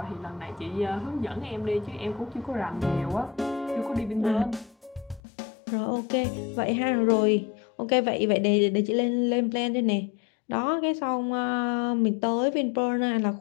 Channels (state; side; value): drops out; right; at 5.2 s